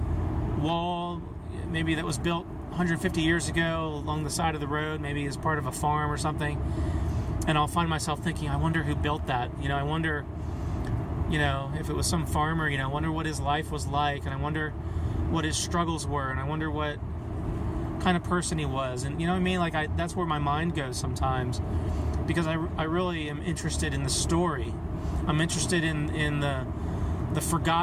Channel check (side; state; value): both; identical; correlation 1.00